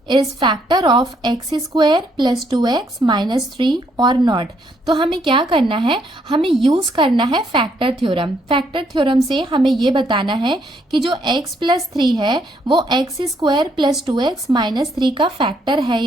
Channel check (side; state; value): both; normal; correlation 0.71